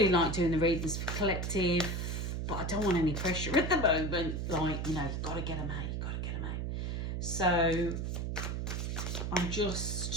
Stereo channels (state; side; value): noise; right; hum, 2 dB below the sound